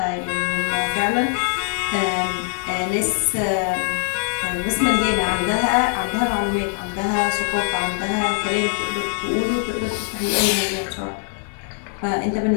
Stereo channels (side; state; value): right; silent; 57 dB below the other